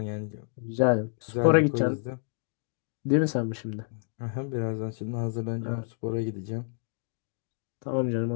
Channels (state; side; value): silent; right; 58 dB below the other